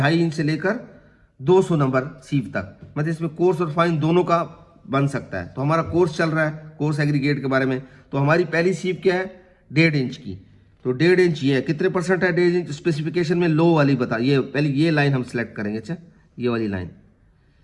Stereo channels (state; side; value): identical; both; correlation 1.00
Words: इंच से लेकर 200 नंबर सीव तक, मतलब इसमें कोर्स और फाइन दोनों का बन सकता है। तो हमारा कोर्स चल रहा है, कोर्स एग्रीगेट के बारे में। तो हमारी पहली सीव क्या है, 1.5 इंच की। तो 1.5 इंच ये है, कितने परसेंट है 1.5 इंच, स्पेसिफिकेशन में लो वाली बता। ये पहले ये लाइन हम सिलेक्ट करेंगे। अच्छा, ये वाली